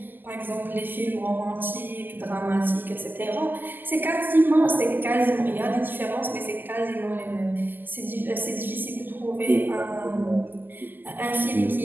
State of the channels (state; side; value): late; left; 0.090 ms